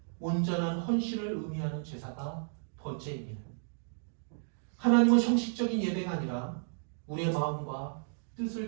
온전한 헌신을 의미하는 제사가 번제입니다. 하나님은 형식적인 예배가 아니라 우리의 마음과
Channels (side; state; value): left; silent; digital silence